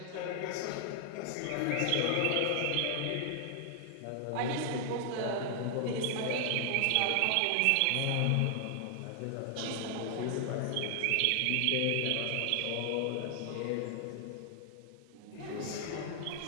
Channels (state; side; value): different; both; correlation 0.00